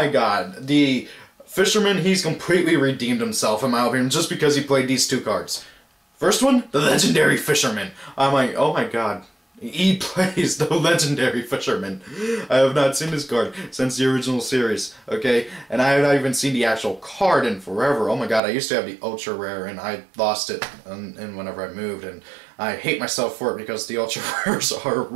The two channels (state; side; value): drops out; left; at 18.4 s